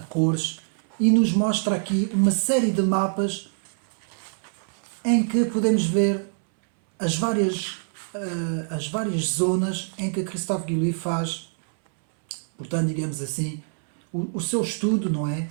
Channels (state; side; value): silent; left; 62 dB below the other